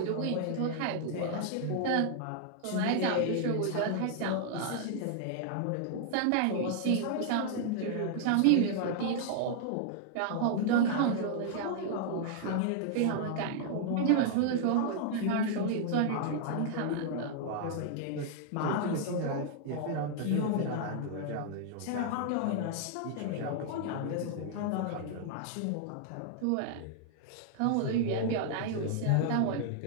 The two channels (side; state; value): both; different; correlation -0.01